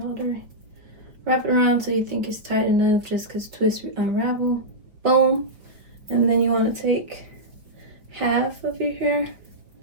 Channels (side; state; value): left; late; 5.1 ms